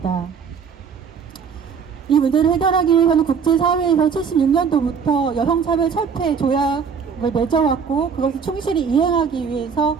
이 문제를 해결하기 위해서는 국제사회에서 76년도부터 여성차별 철폐 조약을 맺어왔고 그것을 충실히 이행하기 위해서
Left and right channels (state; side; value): quieter; left; 6.3 dB